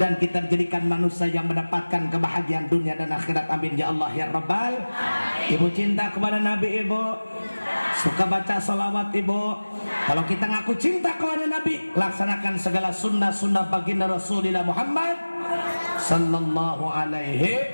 kita jadikan manusia yang mendapatkan kebahagiaan dunia dan akhirat. Amin ya Allah ya Rabbal. Ibu cinta kepada Nabi ibu, suka baca salawat ibu. Kalau kita ngaku cinta kepada Nabi, laksanakan segala sunnah-sunnah baginda Rasulullah Muhammad sallallahu alaihi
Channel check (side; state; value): both; inverted; correlation -1.00